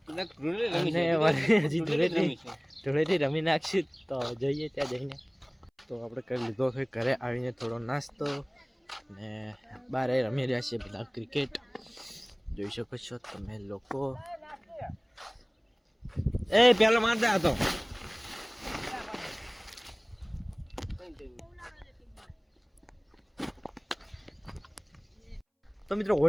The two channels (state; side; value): identical; both; correlation 1.00